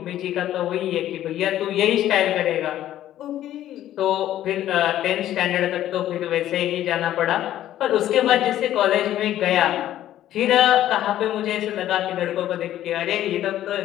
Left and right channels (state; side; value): quieter; right; 12.6 dB